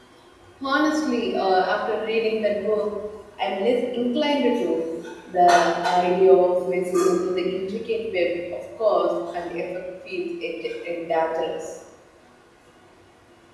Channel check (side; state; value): both; identical; correlation 1.00